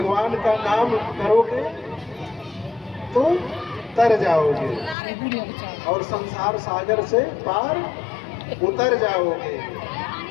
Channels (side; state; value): right; drops out; at 5.0 s